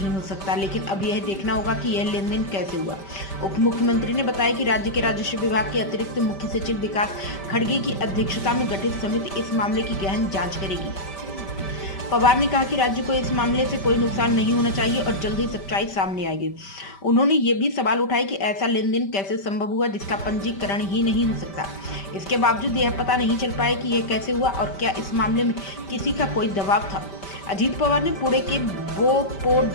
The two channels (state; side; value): late; right; 5.1 ms